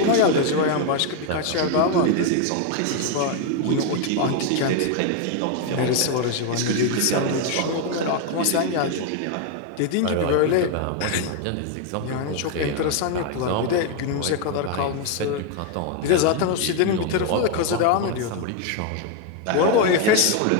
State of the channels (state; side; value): different; both; correlation 0.01